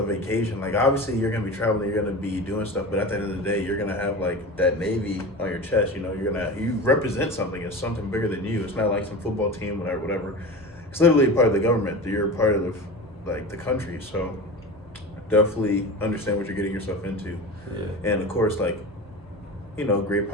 vacation. Like, obviously you're gonna be traveling, you're gonna be doing stuff, but at the end of the day, you're gonna have like that Navy on your chest. You know, you represent something. It's something bigger than you. It's not like some football team, whatever. It's literally part of the government. You're part of the country. So definitely understand what you're getting yourself into. Yeah. And of course, like, you know, great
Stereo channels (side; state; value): both; normal; correlation 0.30